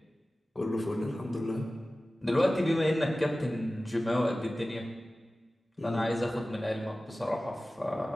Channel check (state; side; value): normal; both; correlation 0.96